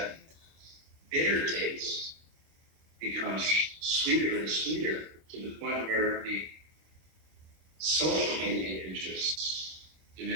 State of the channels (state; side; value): late; left; 26 ms